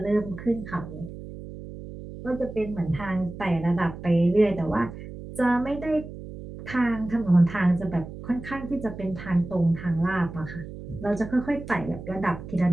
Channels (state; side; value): noise; right; hum, 12 dB below the sound